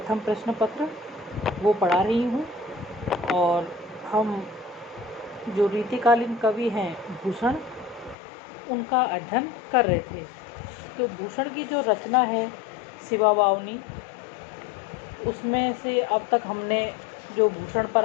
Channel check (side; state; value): right; drops out; at 8.2 s